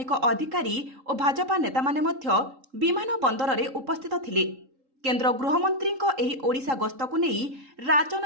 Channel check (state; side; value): late; left; 3.8 ms